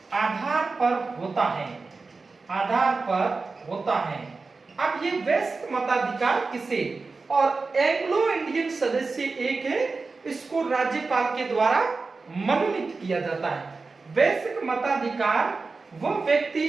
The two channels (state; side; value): quieter; left; 4.1 dB